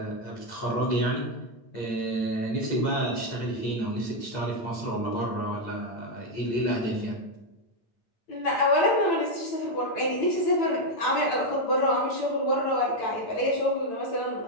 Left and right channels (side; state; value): right; late; 8.9 ms